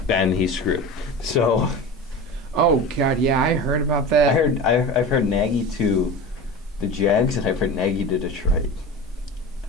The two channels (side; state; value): both; normal; correlation 0.30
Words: then he's screwed. So. Oh God, yeah, I heard about that. I've heard Nagy to the Jags and I've heard Nagy to Detroit.